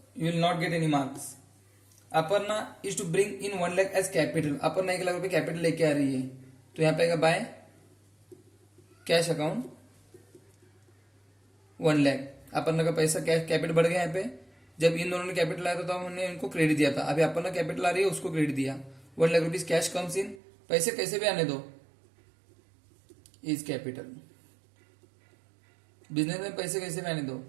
you will not get any marks. Aparna is to bring in 1 lakh as capital. Aparna 1 lakh रुपए capital लेके आ रही है तो यहाँ पे आएगा by cash account 1 lakh. Aparna का पैसा कैश कैपिटल बढ़ गया यहाँ पे. जब इन दोनों ने कैपिटल लाया था तो हमने इनको क्रेडिट दिया था. अभी अपर्णा कैपिटल आ रही है उसको क्रेडिट दिया 1 lakh rupees. Cash comes in. पैसे कैसे भी आने दो इज कैपिटल. बिजनेस में पैसे कैसे भी आने दो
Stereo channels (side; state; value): left; drops out; at 20.4 s